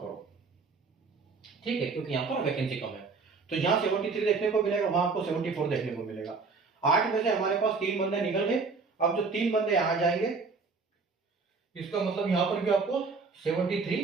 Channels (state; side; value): quieter; left; 4.5 dB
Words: करो, ठीक है, क्योंकि यहाँ पर वैकेंसी कम है। तो यहाँ 73 देखने को मिलेगा, वहां आपको 74 देखने को मिलेगा। 8 में से हमारे पास 3 बंदे निकल गए। अब जो 3 बंदे आ जाएंगे, इसका मतलब यहाँ पर भी आपको